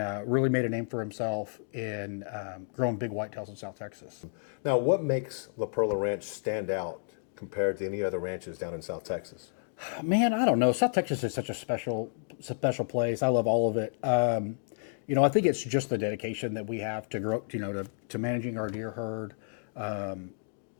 really made a name for himself in growing big whitetails in South Texas. Now, what makes La Perla Ranch stand out compared to any other ranches down in South Texas? Man, I don't know. South Texas is such a special place. I love all of it. I think it's just the dedication that we have to grow, to managing our deer herd.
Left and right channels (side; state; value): right; silent; digital silence